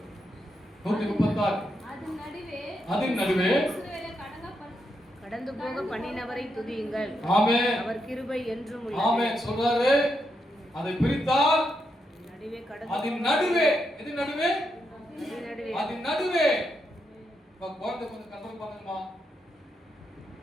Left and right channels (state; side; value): normal; both; correlation 0.82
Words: 136, அதன் நடுவே கடந்து போக பண்ணினவரை துதியுங்கள். ஆமென். அவர் கிருபை என்றும் உள்ளது. ஆமென் சொல்றாரு. அதை பிரித்தால் நடுவே கடந்து, அதன் நடுவே, எது நடுவே? அதன் நடுவே. குழந்தை கொஞ்சம் கண்ட்ரோல் பண்ணுங்கம்மா,